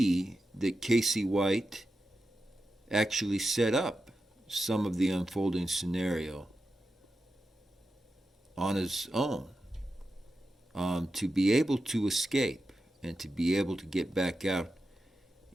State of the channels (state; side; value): normal; both; correlation 0.90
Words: that Casey White actually set up some of the unfolding scenario on his own to be able to escape and to be able to get back out